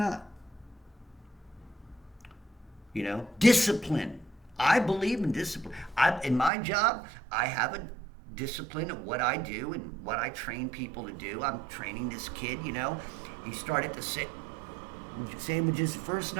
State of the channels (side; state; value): left; drops out; at 6.5 s